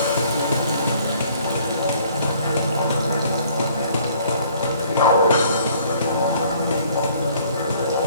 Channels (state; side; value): inverted; both; correlation -0.59